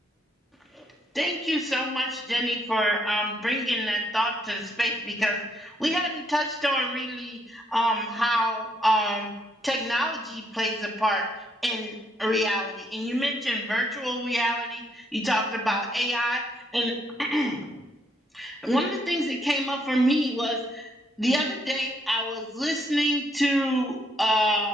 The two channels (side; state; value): both; normal; correlation 0.72